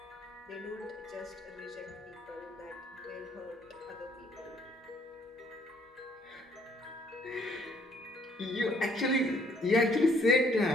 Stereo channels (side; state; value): both; normal; correlation 0.65